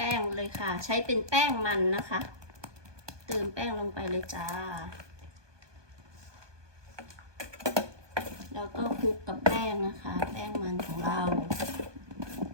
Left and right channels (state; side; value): late; left; 1.2 ms